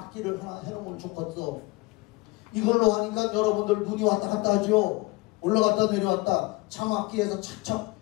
하나 해놓으면 좋겠어. 이걸로 하니까 여러분들 눈이 왔다 갔다 하죠. 올라갔다 내려왔다. 자막기에서 착착,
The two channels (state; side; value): quieter; right; 23.3 dB